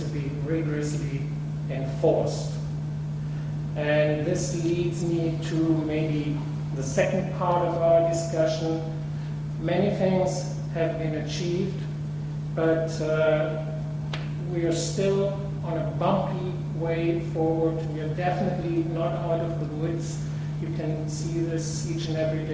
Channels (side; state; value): both; identical; correlation 1.00